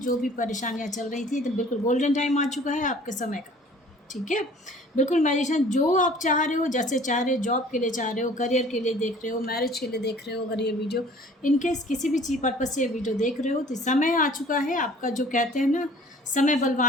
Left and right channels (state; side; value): normal; both; correlation 0.51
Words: भी परेशानियां चल रही थी तो बिल्कुल गोल्डन टाइम आ चुका है आपके समय का। ठीक है, बिल्कुल मैजिशियन जो आप चाह रहे हो, जैसे चाह रहे हो, जॉब के लिए चाह रहे हो, करियर के लिए देख रहे हो, मैरिज के लिए देख रहे हो, अगर ये वीडियो इनकेस किसी भी चीज़ पर्पज से ये वीडियो देख रहे हो तो समय आ चुका है आपका। जो कहते हैं ना, समय